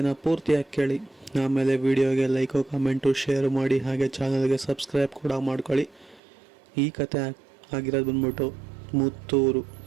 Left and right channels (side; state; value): left; drops out; at 6.2 s